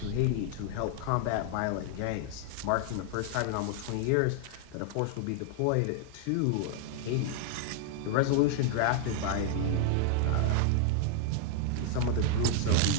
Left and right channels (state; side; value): different; both; correlation 0.00